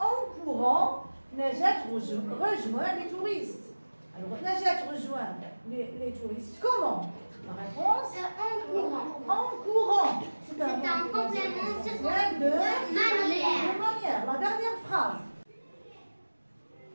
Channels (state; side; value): inverted; both; correlation -1.00